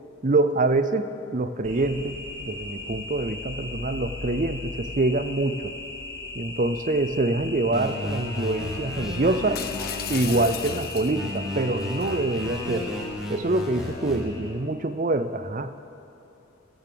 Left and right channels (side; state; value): both; normal; correlation 0.36